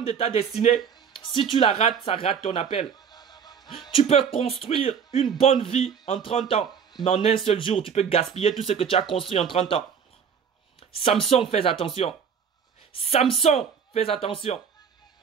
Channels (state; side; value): quieter; left; 7.1 dB